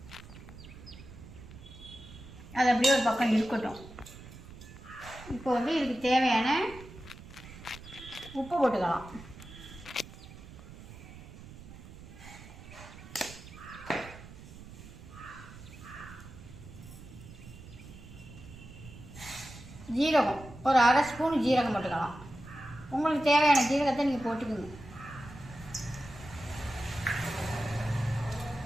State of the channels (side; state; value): right; noise; rumble, 16 dB below the sound